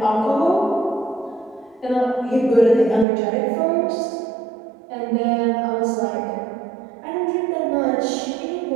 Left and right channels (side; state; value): left; drops out; at 3.1 s